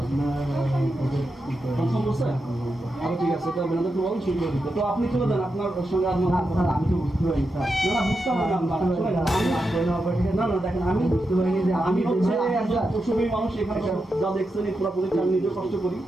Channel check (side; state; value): both; normal; correlation 0.87